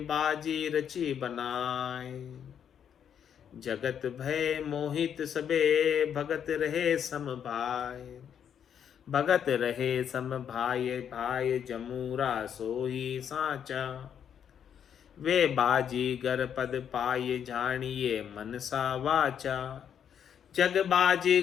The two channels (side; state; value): right; quieter; 8.5 dB